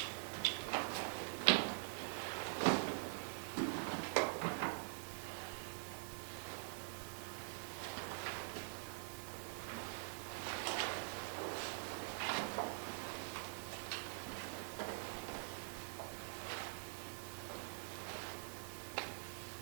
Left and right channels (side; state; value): left; silent; digital silence